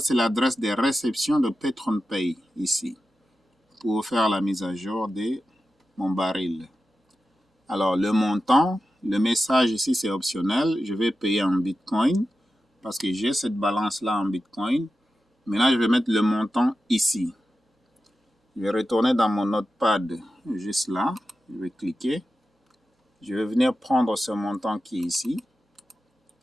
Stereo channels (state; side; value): normal; both; correlation 0.92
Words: c'est l'adresse de réception de PatronPay ici, pour faire la mise à jour de mon baril. Alors, le montant, le message ici, c'est optionnel. Je vais payer en Bitcoin parce que j'ai cette balance-là en Bitcoin. Maintenant, je vais mettre le montant ici. Je vais retourner dans mon notepad juste là. Je vais cliquer. Je vais venir prendre ce montant qui est ici.